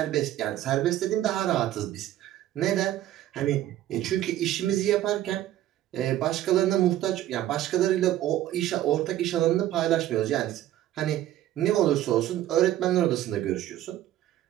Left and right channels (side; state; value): left; quieter; 13.3 dB